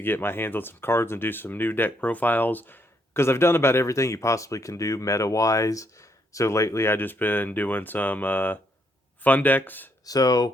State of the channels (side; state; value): both; normal; correlation 0.73